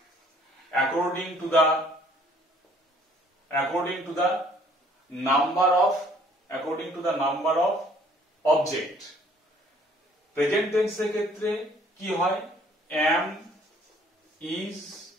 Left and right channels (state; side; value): normal; both; correlation 0.59